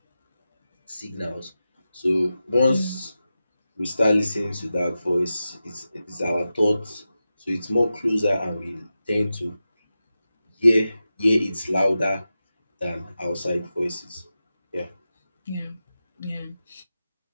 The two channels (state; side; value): inverted; both; correlation -0.92